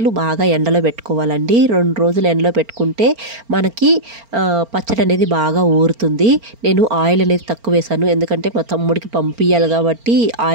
బాగా ఎండలో పెట్టుకోవాలండి. 2 రోజులు ఎండలో పెట్టుకుంటే మనకి పచ్చడి అనేది బాగా ఊరుతుంది. నేను ఆయిల్ అనేది తక్కువ వేసాను, ఎందుకంటే మా తమ్ముడికి పంపించాలి కాబట్టి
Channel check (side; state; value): left; late; 4.4 ms